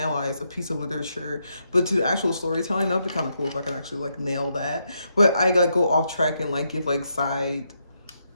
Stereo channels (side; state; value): both; inverted; correlation -0.80